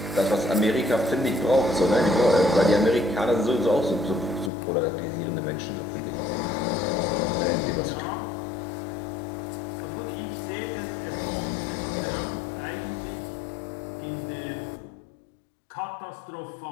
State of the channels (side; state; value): right; drops out; at 4.5 s